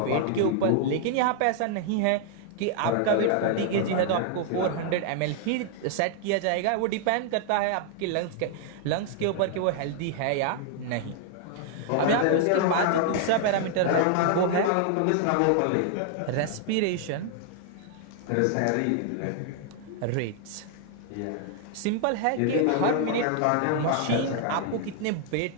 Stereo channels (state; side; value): different; both; correlation 0.00